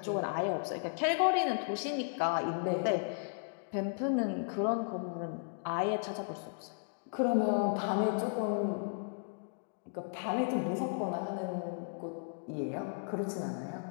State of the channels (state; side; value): silent; right; digital silence